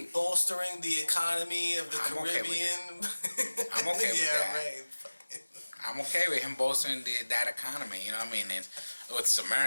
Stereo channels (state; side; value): inverted; both; correlation -1.00